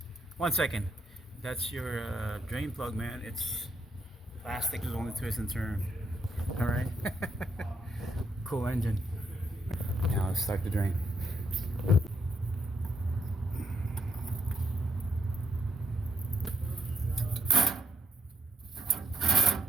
1 second. That's your drain plug, man. It's plastic, is only twist and turn. All right. Cool engine. Now let's start the drain.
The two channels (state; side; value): normal; both; correlation 0.76